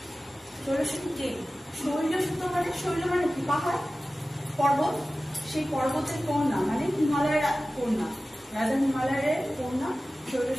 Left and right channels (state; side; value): normal; both; correlation 0.96